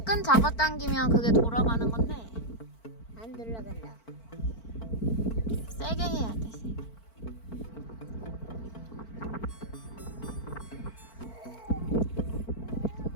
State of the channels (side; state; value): right; late; 4.5 ms